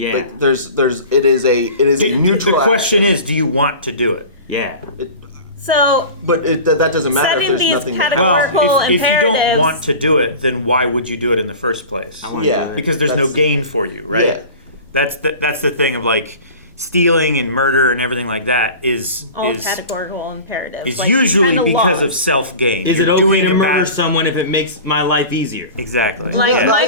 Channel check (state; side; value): inverted; both; correlation -0.36